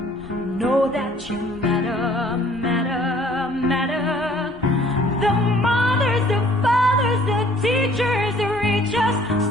Know that you matter, matter, matter. The mothers, the fathers, the teachers, the reachers,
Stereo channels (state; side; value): normal; both; correlation 0.57